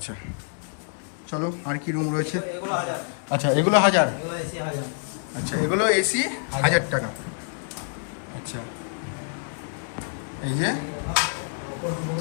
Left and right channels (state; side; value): silent; right; 61 dB below the other